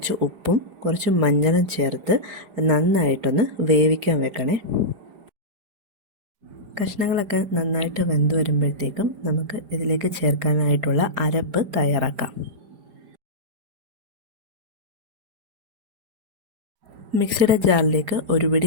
ഉപ്പും കുറച്ച് മഞ്ഞളും ചേർത്ത് നന്നായിട്ടൊന്ന് വേവിക്കാൻ വെക്കണേ. കഷ്ണങ്ങളൊക്കെ നന്നായിട്ട് വെന്ത് വരുമ്പോഴത്തേക്കും നമുക്ക് ഇതിലേക്ക് ചേർക്കാനായിട്ടുള്ള അരപ്പ് തയ്യാറാക്കാം. മിക്സിയുടെ ജാറിലേക്ക് ഒരു പിടി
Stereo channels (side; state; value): left; late; 4.8 ms